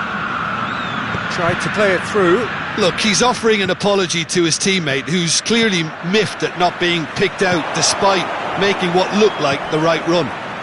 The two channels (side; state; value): both; identical; correlation 1.00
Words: Tried to play it through. Look, he's offering an apology to his teammate, who's clearly miffed at not being picked out despite making what looked like the right run.